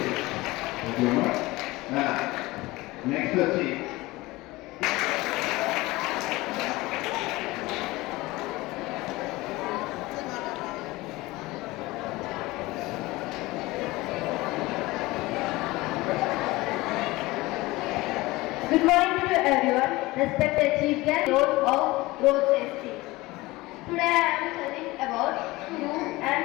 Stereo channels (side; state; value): right; quieter; 20.4 dB